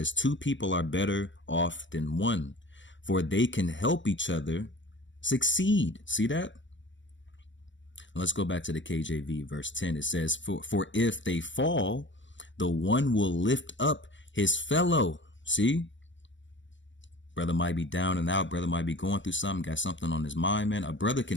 two people are better off than one, for they can help each other succeed. See that? Let's go back to the KJV, verse 10. It says, for if they fall, the one will lift up his fellow. See? Brother might be down and out. Brother might be going through something, got something on his mind, man. A brother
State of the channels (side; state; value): right; late; 0.54 ms